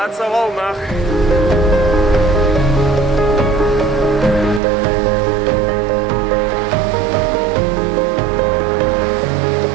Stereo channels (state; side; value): drops out; left; at 4.6 s